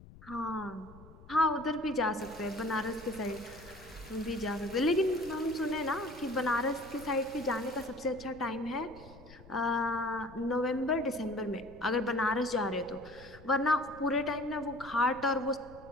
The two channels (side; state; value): left; noise; rumble, 20 dB below the sound